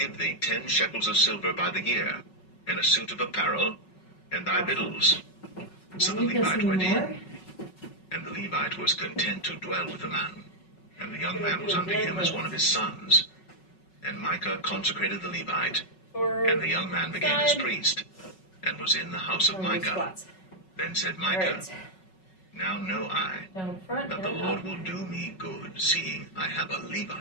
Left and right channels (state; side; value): late; right; 5.4 ms